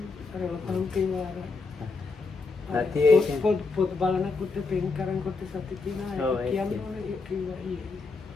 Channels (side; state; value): right; quieter; 4.1 dB